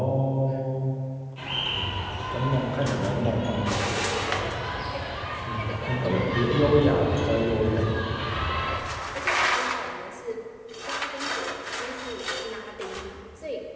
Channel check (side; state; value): both; identical; correlation 1.00